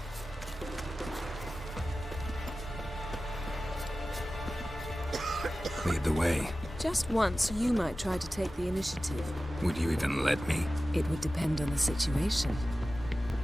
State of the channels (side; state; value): both; normal; correlation 0.95